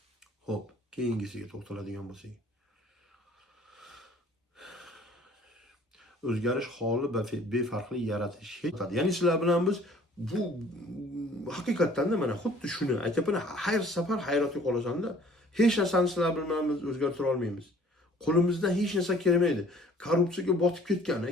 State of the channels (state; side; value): normal; both; correlation 0.54